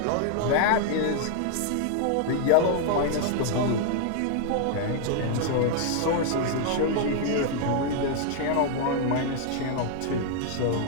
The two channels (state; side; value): different; both; correlation 0.00